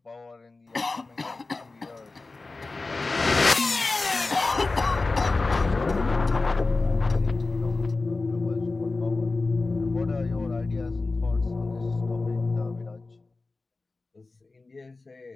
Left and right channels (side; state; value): right; quieter; 3.5 dB